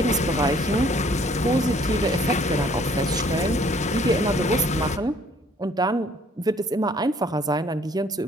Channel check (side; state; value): both; normal; correlation 0.59